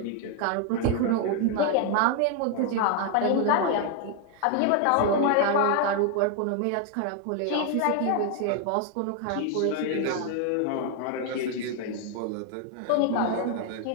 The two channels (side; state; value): both; different; correlation 0.00